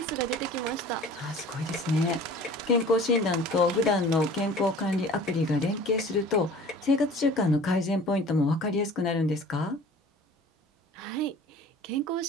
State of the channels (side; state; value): both; normal; correlation 0.45